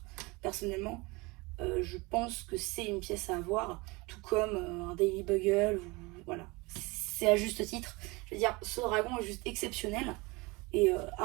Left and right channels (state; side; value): quieter; left; 25.1 dB